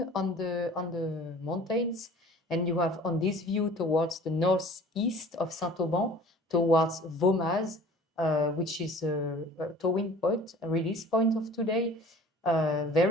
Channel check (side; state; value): both; normal; correlation 0.46